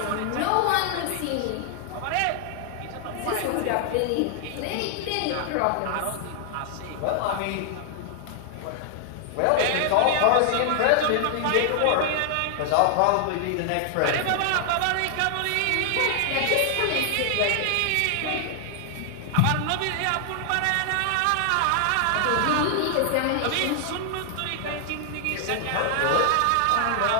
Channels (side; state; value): both; different; correlation 0.00